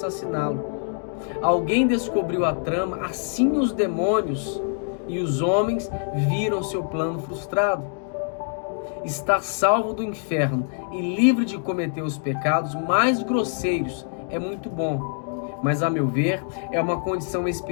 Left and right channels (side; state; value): right; silent; 62 dB below the other